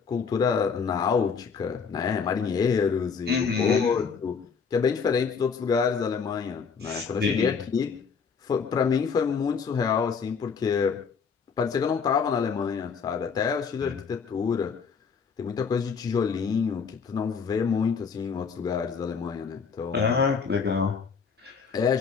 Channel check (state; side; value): quieter; right; 5.9 dB